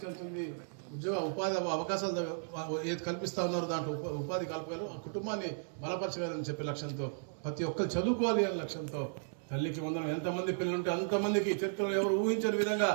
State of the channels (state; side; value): silent; left; 55 dB below the other